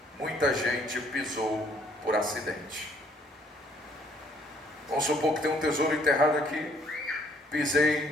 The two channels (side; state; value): both; normal; correlation 0.63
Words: muita gente pisou por acidente. Vamos supor que tem um tesouro enterrado aqui,